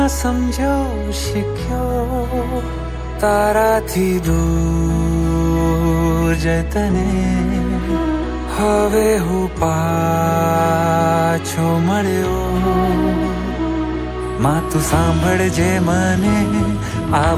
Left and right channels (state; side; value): identical; both; correlation 1.00